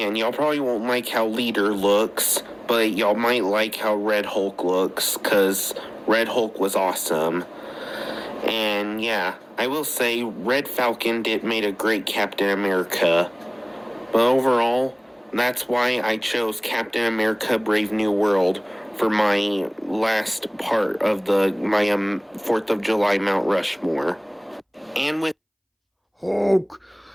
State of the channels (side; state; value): both; identical; correlation 1.00